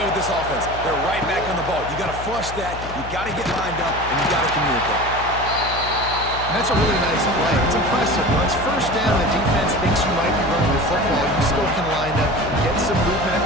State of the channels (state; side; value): noise; left; hum, 11 dB below the sound